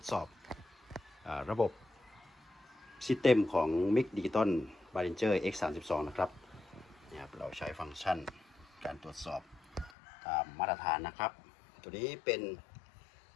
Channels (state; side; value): drops out; right; at 9.9 s